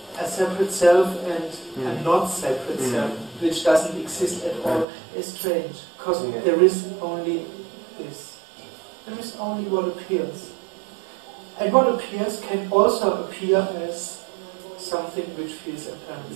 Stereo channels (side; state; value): left; drops out; at 4.9 s